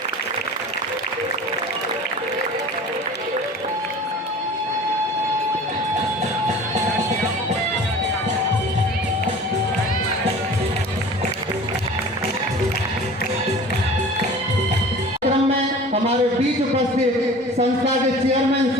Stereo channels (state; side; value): normal; both; correlation 0.42